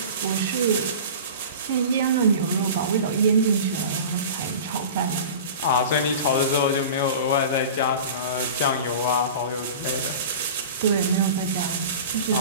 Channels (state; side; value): inverted; both; correlation -0.36